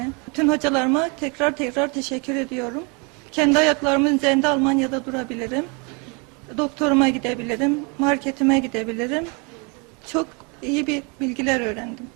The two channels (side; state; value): left; quieter; 32.3 dB